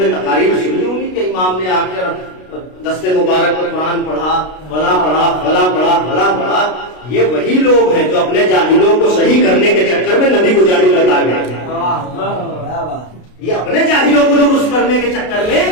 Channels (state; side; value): late; right; 33 ms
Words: تقاریر سنی ہوگی کہ امام نے آ کر دستے مبارک پر قرآن پڑھا، فلاں پڑھا، فلاں پڑھا، فلاں پڑھا۔ یہ وہی لوگ ہیں جو اپنے جاہلوں کو صحیح کرنے کے چکر میں نبی کو جاہل بتا گئے، یہ اپنے جاہلوں کو درست کرنے کے چکر میں